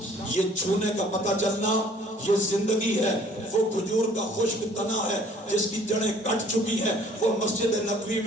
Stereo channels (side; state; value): both; normal; correlation 0.56